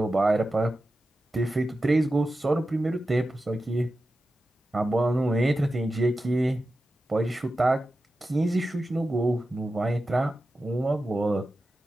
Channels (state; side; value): normal; both; correlation 0.92